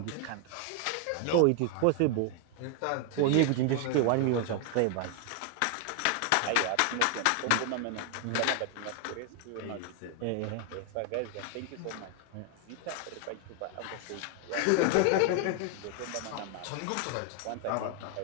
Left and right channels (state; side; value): different; both; correlation 0.00